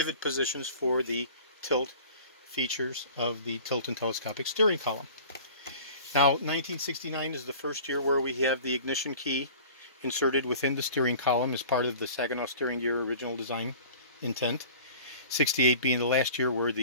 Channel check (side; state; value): both; inverted; correlation -0.44